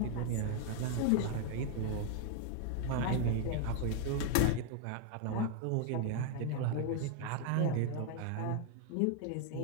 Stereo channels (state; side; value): different; both; correlation 0.00